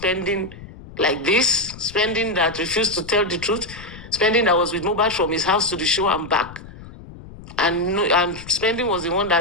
like this, spending that refused to tell the truth, spending that was with Mohbad from his house to the show and back, and spending was the one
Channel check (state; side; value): noise; left; rumble, 16 dB below the sound